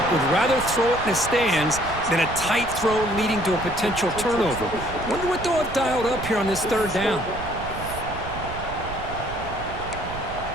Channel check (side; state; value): right; noise; rumble, 11 dB below the sound